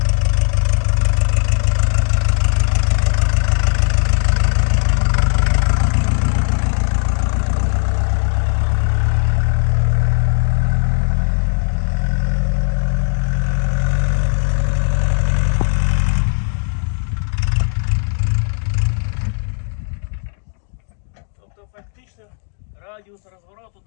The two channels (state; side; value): silent; right; digital silence